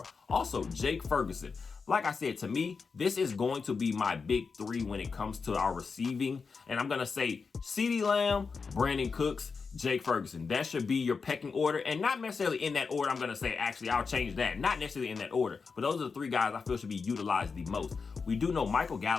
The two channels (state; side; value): quieter; right; 5.0 dB